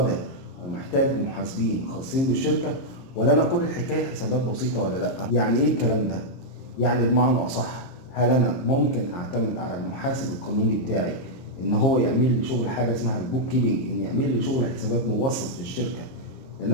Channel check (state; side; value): late; right; 23 ms